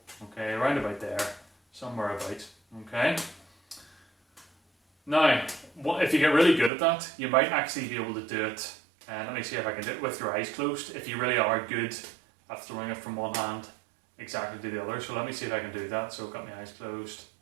Okay, around about there, somewhere about. Okay. Now, if you get really good at that, you might actually be able to do it. And let me see if I can do it with your eyes closed. If you really are good at throwing it from one hand exactly to the other. So let me see if I can do that. So I've got my eyes closed.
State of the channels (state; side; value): drops out; left; at 6.7 s